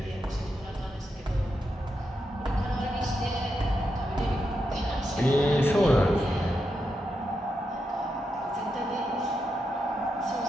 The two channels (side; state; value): both; normal; correlation 0.85